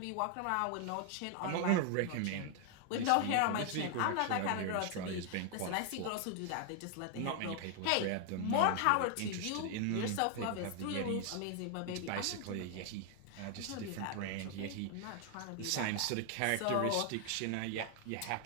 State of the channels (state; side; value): different; both; correlation 0.00